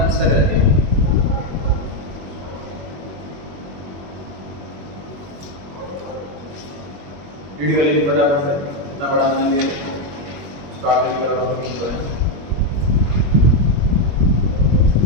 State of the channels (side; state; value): left; late; 21 ms